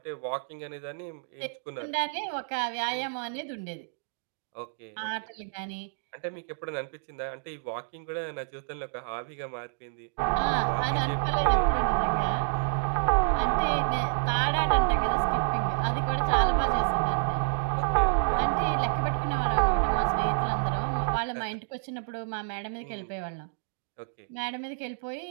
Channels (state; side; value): silent; left; digital silence